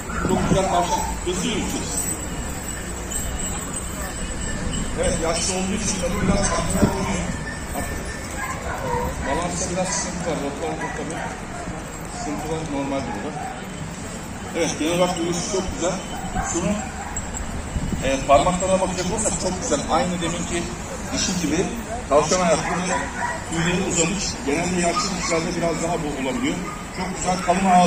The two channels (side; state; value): both; identical; correlation 1.00